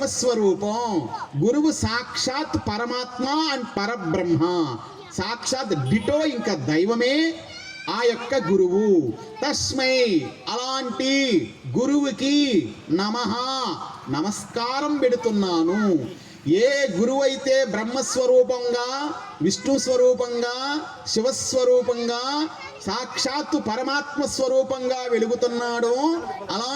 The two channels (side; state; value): both; identical; correlation 1.00